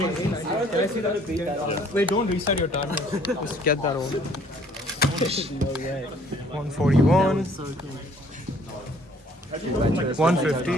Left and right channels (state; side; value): normal; both; correlation 0.59